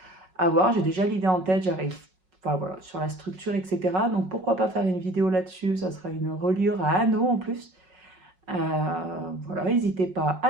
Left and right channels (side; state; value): left; late; 5.4 ms